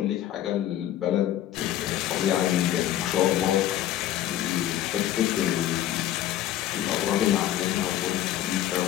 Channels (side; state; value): right; quieter; 12.6 dB